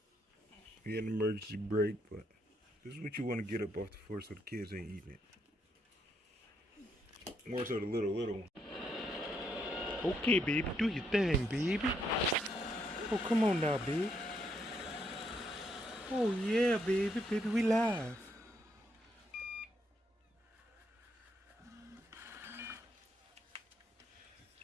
We had an emergency break, but this is what you want to get up off the floor so the kids ain't eating it. More so the little one. Okay, baby, do your thing, baby. Oh, come on now, baby. Oh yeah, baby, we live.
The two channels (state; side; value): normal; both; correlation 0.76